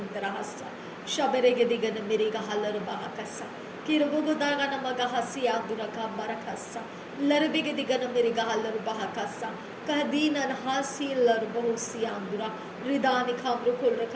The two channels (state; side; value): identical; both; correlation 1.00